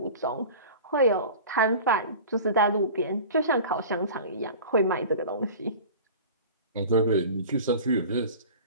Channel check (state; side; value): inverted; both; correlation -0.38